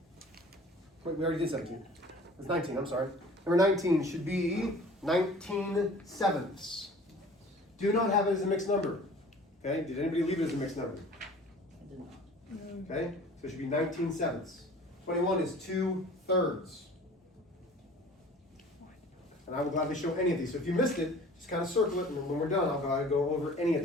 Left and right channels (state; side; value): normal; both; correlation 0.46